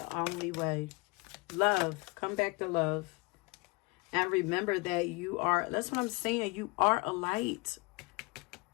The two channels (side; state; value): right; quieter; 27.5 dB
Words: only way. Love. Come back to love. And remember that you are, that's what I'm saying, you are a light.